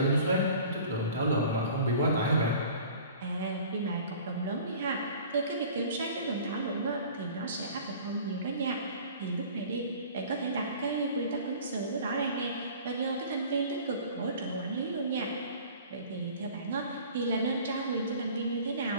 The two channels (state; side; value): inverted; both; correlation -0.45